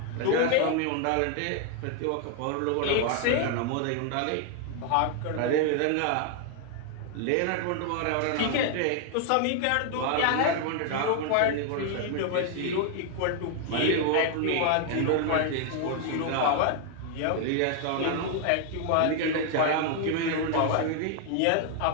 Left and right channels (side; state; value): both; different; correlation 0.00